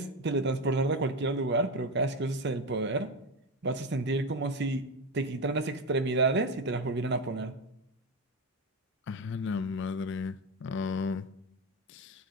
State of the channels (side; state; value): both; normal; correlation 0.16